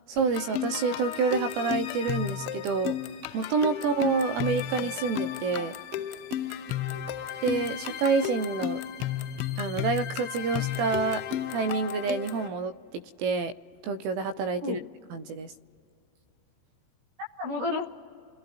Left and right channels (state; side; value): late; left; 19 ms